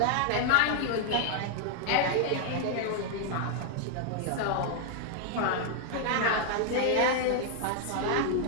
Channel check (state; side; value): different; both; correlation 0.00